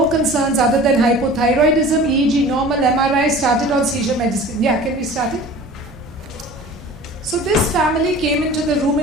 concerns other than hypothyroidism, EEG normal, MRI, started on seizure medicine. Yeah, can we start it? So this family came into the room,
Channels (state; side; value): normal; both; correlation 0.42